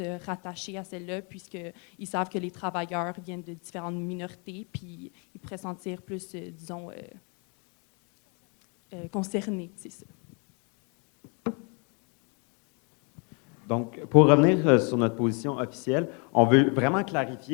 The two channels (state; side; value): quieter; right; 35.3 dB